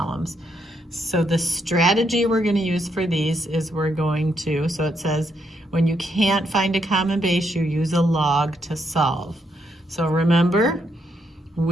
So the strategy we're going to use for these is we're going to, so it says when you can't find a common base, you use a log to solve. So remember,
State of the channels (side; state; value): both; normal; correlation 0.77